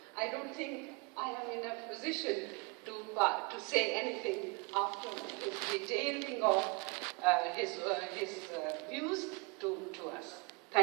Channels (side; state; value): left; quieter; 29.8 dB